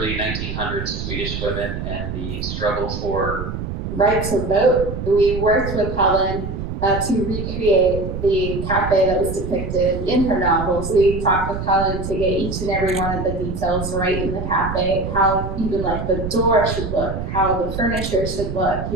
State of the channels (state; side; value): noise; right; rumble, 5 dB below the sound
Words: 1900s Swedish women and the struggle for right to vote. We worked with Helen to recreate the cafe that was depicted in her novels. We talked with Helen to get each and every one of the details right in the cafe, how even like the door should look, how the furniture should look,